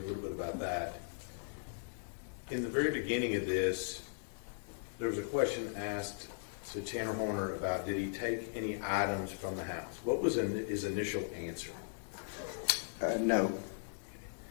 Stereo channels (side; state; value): right; silent; digital silence